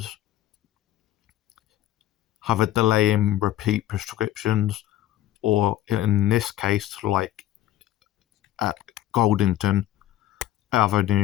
have a delay in repeat prescriptions, or in this case, like at Goldington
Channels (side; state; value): right; quieter; 13.5 dB